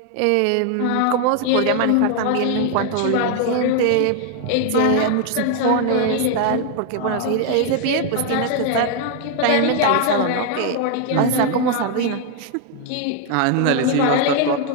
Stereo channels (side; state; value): both; different; correlation 0.00